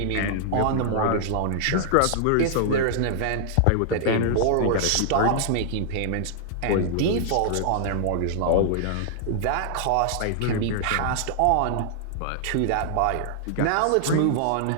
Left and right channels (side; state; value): both; different; correlation -0.01